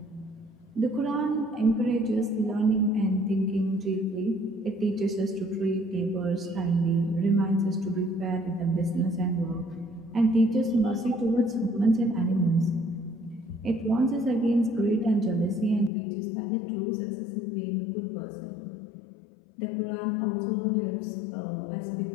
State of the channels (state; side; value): drops out; right; at 15.9 s